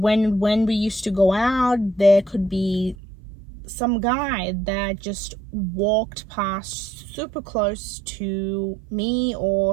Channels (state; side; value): drops out; left; at 3.0 s